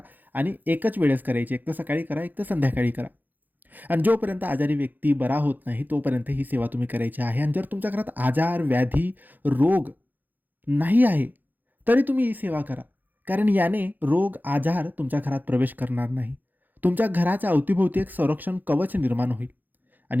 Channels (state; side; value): late; left; 0.086 ms